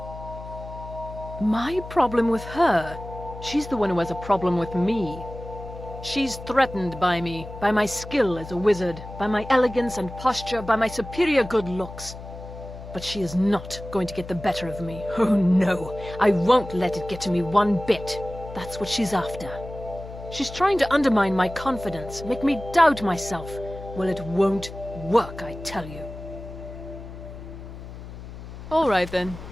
My problem with her? She's the one who has a problem with me. She's threatened by me, by my skill as a wizard, by my elegance and posture, by my superior good looks. But she is not going to get the better of me. Oh no, I won't let it get to me one bit. That's what she's after. She's trying to undermine my confidence, make me doubt myself. Well, it won't work, I tell you. All right then.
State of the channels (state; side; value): noise; left; hum, 13 dB below the sound